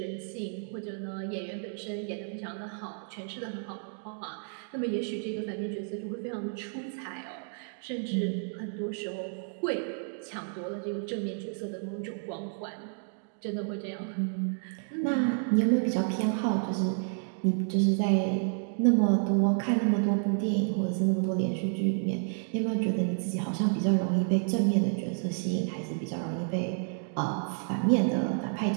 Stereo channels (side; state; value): left; silent; 57 dB below the other